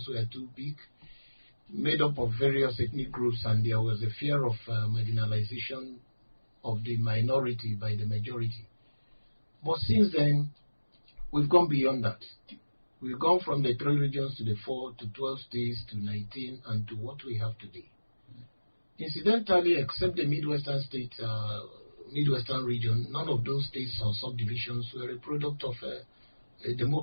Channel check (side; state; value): both; inverted; correlation -1.00